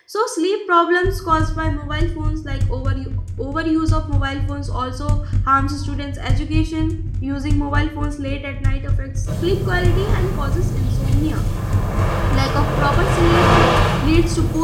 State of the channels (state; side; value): identical; both; correlation 1.00